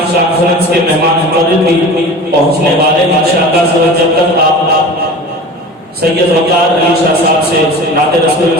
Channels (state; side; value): normal; both; correlation 0.36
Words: کانفرنس کے مہمان مقرر بھی پہنچنے والے ہیں۔ انشاءاللہ جب تک آپ سید وقار علی شاہ صاحب سے نعت رسول